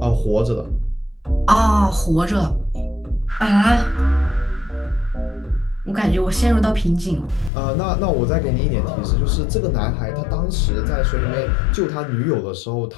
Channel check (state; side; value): drops out; right; at 7.5 s